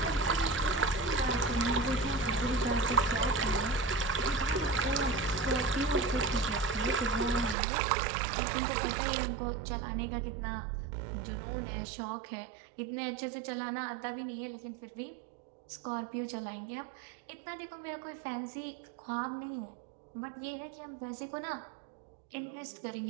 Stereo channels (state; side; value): drops out; left; at 7.6 s